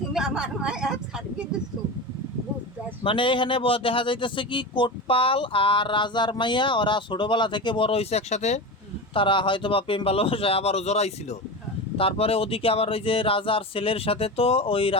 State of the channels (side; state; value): both; normal; correlation 0.24